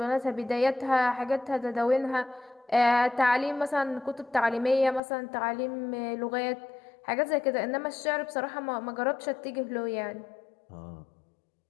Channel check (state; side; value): drops out; right; at 5.0 s